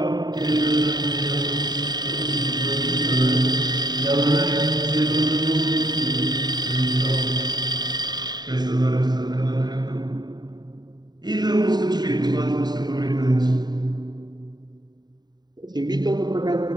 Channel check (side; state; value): left; late; 0.20 ms